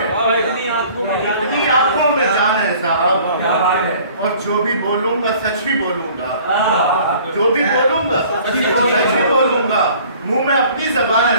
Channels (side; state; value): both; inverted; correlation -0.52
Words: इतनी आंखों में जान है साहब, और जो भी बोलूंगा सच ही बोलूंगा, जो भी बोलूंगा सच ही बोलूंगा। मुंह में अपनी जबान है